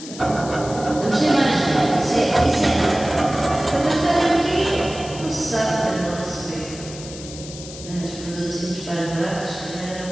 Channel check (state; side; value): noise; left; hiss, 14 dB below the sound